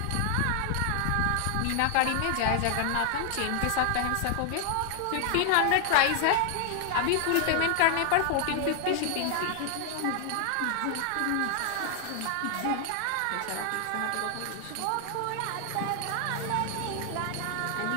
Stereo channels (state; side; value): different; both; correlation 0.00